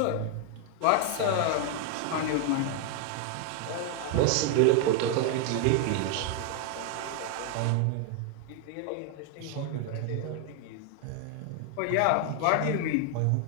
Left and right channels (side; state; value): both; different; correlation 0.00